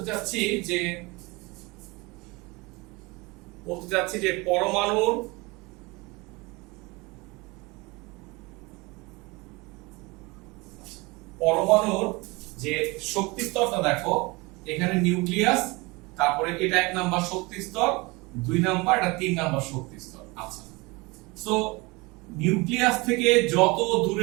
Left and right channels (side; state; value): left; quieter; 25.0 dB